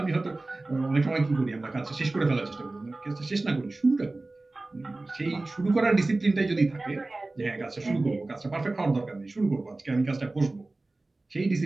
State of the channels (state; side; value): quieter; left; 3.1 dB